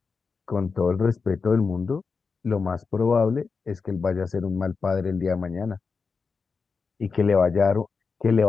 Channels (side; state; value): right; quieter; 5.0 dB